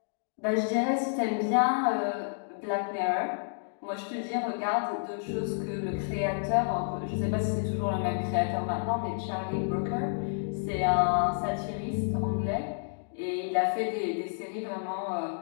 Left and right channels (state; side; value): silent; right; digital silence